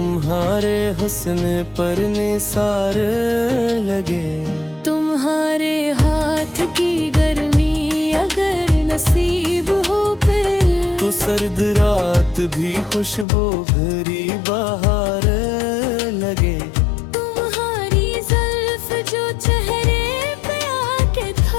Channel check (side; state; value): right; drops out; at 13.2 s